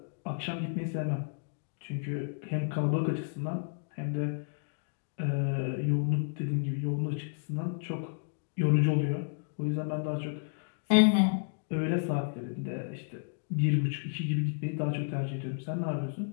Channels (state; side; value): silent; right; digital silence